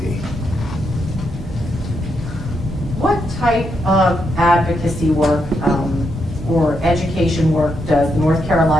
What type of advocacy work or education work does the North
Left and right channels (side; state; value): both; normal; correlation 0.81